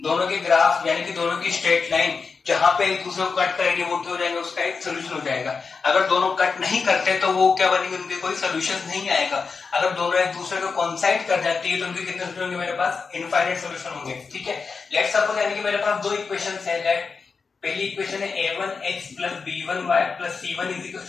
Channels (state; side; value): quieter; right; 5.0 dB